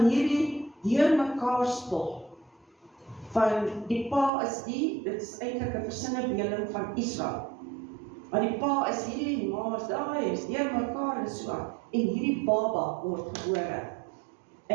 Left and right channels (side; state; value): left; drops out; at 4.3 s